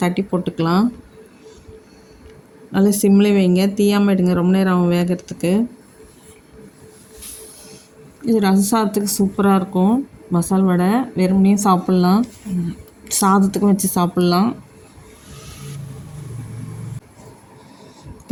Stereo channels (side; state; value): both; identical; correlation 1.00